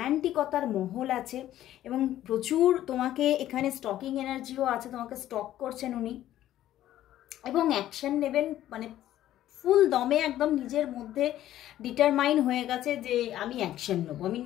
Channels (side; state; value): right; quieter; 13.0 dB